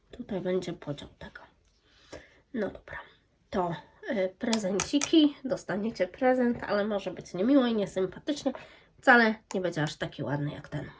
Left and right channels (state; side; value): identical; both; correlation 1.00